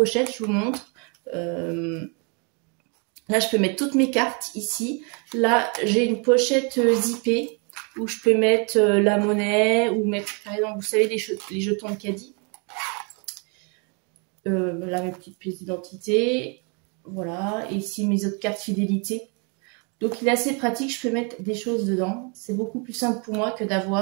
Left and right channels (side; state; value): left; quieter; 35.3 dB